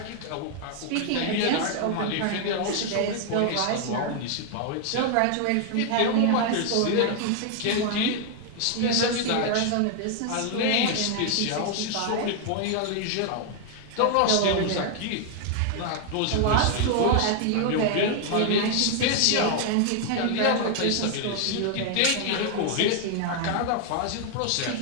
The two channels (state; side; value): different; both; correlation 0.00